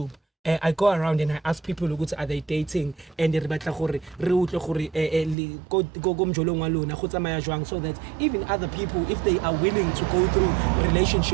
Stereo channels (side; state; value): left; drops out; at 5.4 s